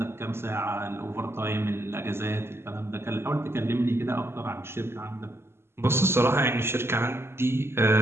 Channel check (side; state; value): left; late; 0.12 ms